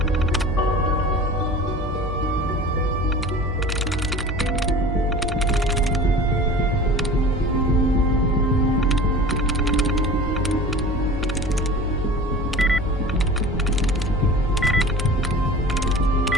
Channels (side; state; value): both; normal; correlation 0.39